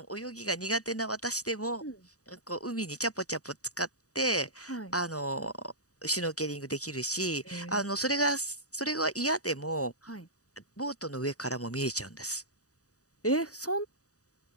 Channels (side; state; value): right; late; 0.66 ms